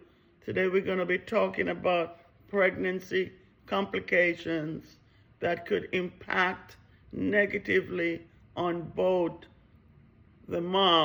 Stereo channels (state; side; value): identical; both; correlation 1.00